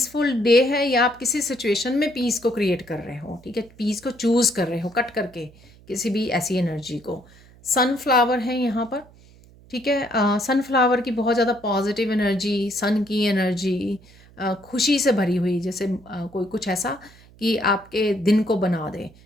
डे है, या आप किसी सिचुएशन में पीस को क्रिएट कर रहे हो। ठीक है, पीस को चूज़ कर रहे हो कट करके किसी भी ऐसी एनर्जी को। सनफ्लावर है यहाँ पर। ठीक है, सनफ्लावर की बहुत ज़्यादा पॉजिटिव एनर्जी, सन की एनर्जी, खुशी से भरी हुई, जैसे कोई कुछ ऐसा कि आपके दिन को बना दे,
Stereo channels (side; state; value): right; noise; hum, 25 dB below the sound